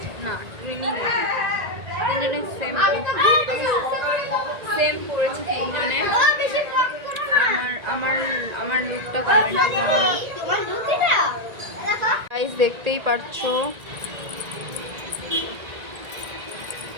না, ট্রেনিং তিনজনে সেম পড়েছে, তিনজনে। আমার আমার আমার লুকটা কমেন্ট গাইস দেখতেই পারছো।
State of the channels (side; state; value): left; late; 1.9 ms